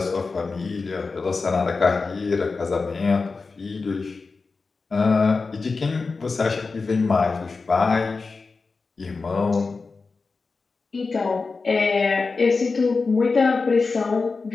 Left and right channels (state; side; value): quieter; right; 4.3 dB